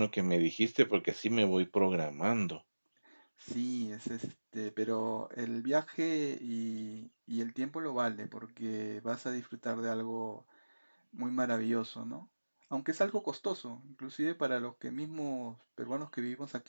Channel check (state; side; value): inverted; both; correlation -1.00